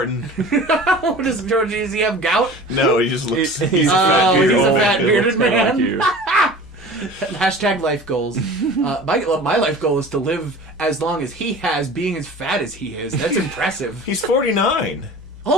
What does George, does he have gout? No, he just looks... He's a a fat he's bearded a old fat man. bearded man. Like you. Hashtag life goals. My life goal is to live as long as he has, being as fat as he is. That's impressive. He's 49.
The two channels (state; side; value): normal; both; correlation 0.40